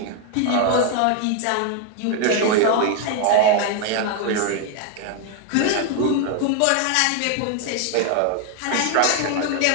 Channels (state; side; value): different; both; correlation 0.00